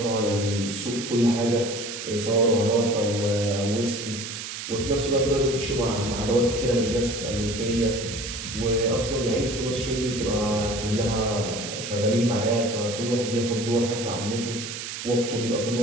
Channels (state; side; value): noise; right; hiss, 7 dB below the sound